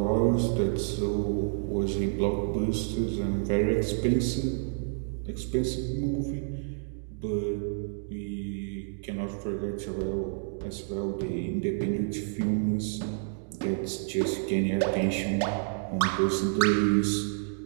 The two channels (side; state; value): left; silent; digital silence